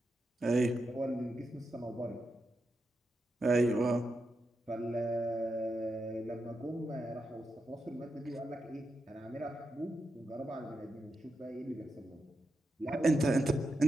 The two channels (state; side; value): normal; both; correlation 0.87